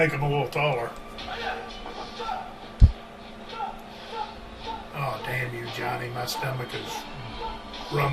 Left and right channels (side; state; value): both; identical; correlation 1.00